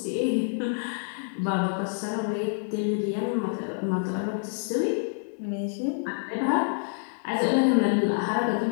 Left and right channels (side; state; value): right; silent; 60 dB below the other